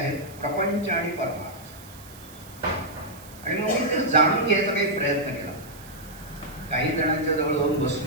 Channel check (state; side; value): noise; right; hiss, 20 dB below the sound